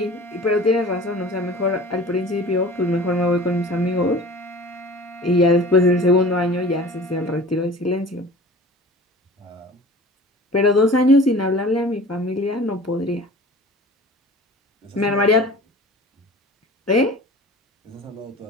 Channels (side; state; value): both; normal; correlation 0.42